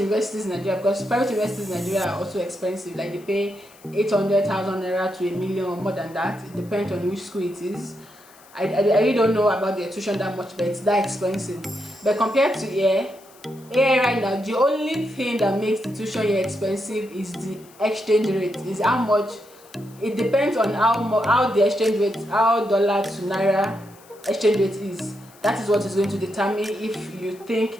in Nigeria, because private universities in Nigeria are also expensive, like they pay 800,000 naira to 1 million or more than that. It depends on which school it is. I really don't know about their tuition that much, but it's that expensive. But compared to here right now, the only thing that makes the tuition here expensive is the exchange rate. Is how much. It depends on how the exchange rate, how dollar to naira exchange rate is. That is what is going to determine if you think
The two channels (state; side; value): noise; left; hiss, 25 dB below the sound